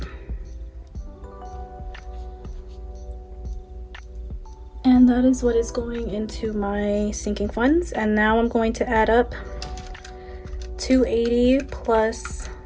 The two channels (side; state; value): both; identical; correlation 1.00